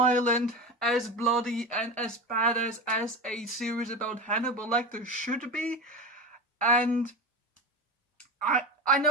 as bloody, and as badass as a series about Hannibal Lecter should be. And I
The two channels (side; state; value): both; normal; correlation 0.24